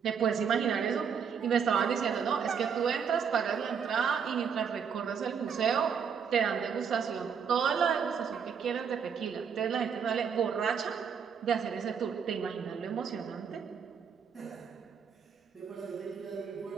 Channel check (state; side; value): quieter; left; 6.9 dB